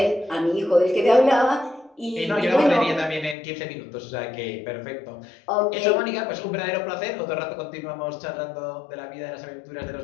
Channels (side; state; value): right; drops out; at 3.4 s